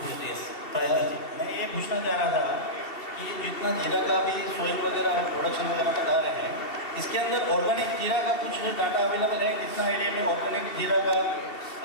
yes. मैं ये पूछना चाह रहा था कि जितना जीरा का भी सोइल वगैरह प्रोडक्शन वगैरह बता रहे हैं, इसके अंदर ऑर्गेनिक जीरा का कुछ डाटा अवेलेबल है? कितना एरिया में ऑर्गेनिक जीरा का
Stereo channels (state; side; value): late; right; 2.7 ms